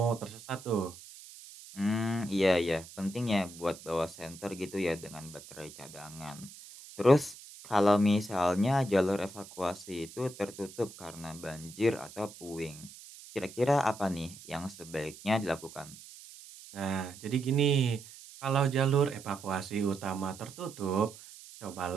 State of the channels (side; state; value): right; noise; hiss, 17 dB below the sound